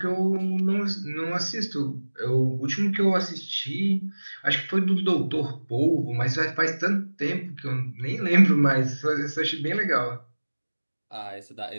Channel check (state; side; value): inverted; both; correlation -1.00